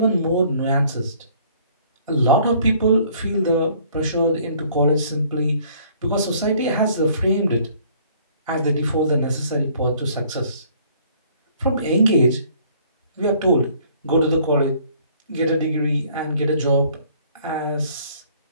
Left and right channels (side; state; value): both; inverted; correlation -0.58